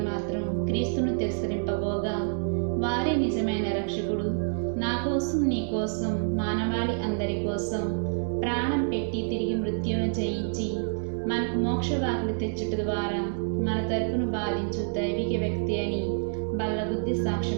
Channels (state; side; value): silent; left; digital silence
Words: మాత్రం క్రీస్తును తిరస్కరింపబోగా, వారే నిజమైన రక్షకుడు, నా కోసం నీ కోసం మానవాళి అందరి కోసం ప్రాణం పెట్టి తిరిగి మృత్యువును జయించి మనకు మోక్షవాకులు తెచ్చుట ద్వారా మన తరపును బాధించు దైవిక వ్యక్తి అని బల్లగుద్ది